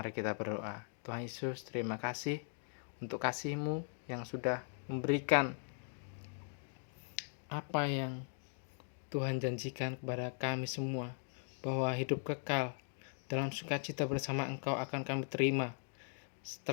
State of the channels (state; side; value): silent; right; 51 dB below the other